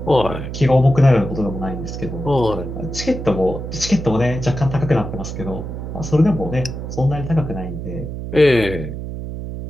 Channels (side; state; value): right; noise; hum, 7 dB below the sound